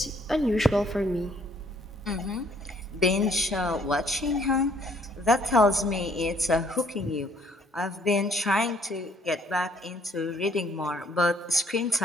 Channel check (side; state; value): both; normal; correlation 0.63